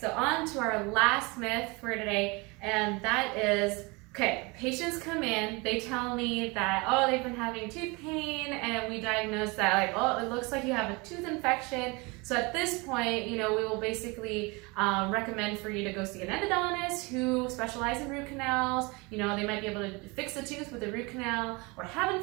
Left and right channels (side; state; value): left; quieter; 27.0 dB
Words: on to our last myth for today, and that is, patients come in, they tell me that, they've been having tooth pain, and we diagnose that, it looks like you have a tooth infection. So at this point, we will basically recommend for you to go see an endodontist who specializes in root canals. They might be able to fix the tooth with a root canal, or heaven